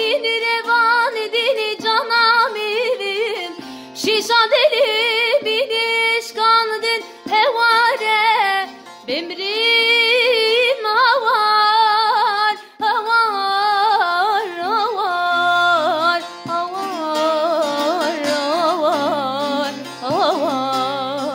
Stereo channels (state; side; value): identical; both; correlation 1.00